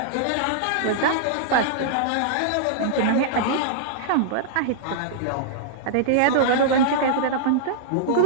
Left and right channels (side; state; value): both; different; correlation -0.02